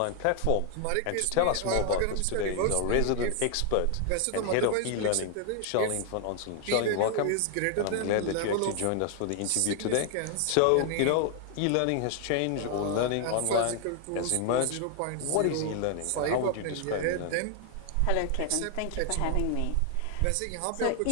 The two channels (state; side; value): different; both; correlation 0.00